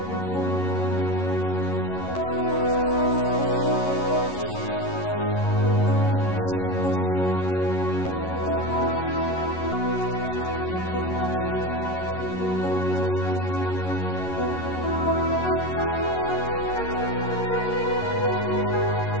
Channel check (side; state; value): right; late; 11 ms